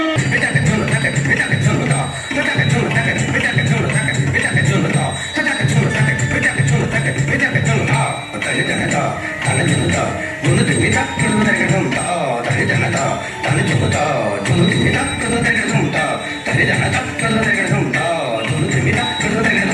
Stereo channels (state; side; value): identical; both; correlation 1.00